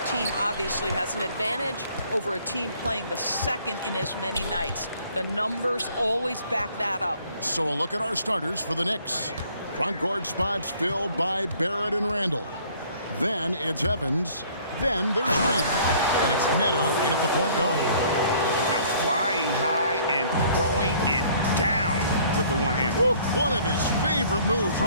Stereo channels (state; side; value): inverted; both; correlation -0.57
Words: team obviously has an advantage over a team playing the second in as many nights. The numbers always back that up. So a look at our starters for the Knicks. Front court spots filled by Barrett and Randall. Then it's Evans. Then there's Reed. And it's Neto in at the point guard. Now flying high and throwing it down with the one hand. Woo, one of his favorite moves